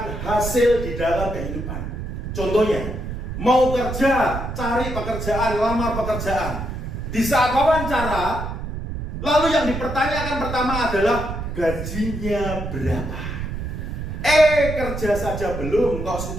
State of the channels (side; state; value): right; noise; rumble, 6 dB below the sound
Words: hasil di dalam kehidupan. Contohnya, mau kerja, cari pekerjaan, lamar pekerjaan. Di saat wawancara, lalu yang dipertanyakan pertama adalah gajinya berapa. Kerja saja belum, kok